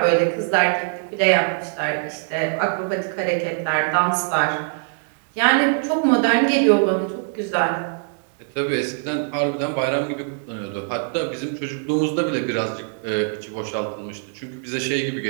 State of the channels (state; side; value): silent; left; 64 dB below the other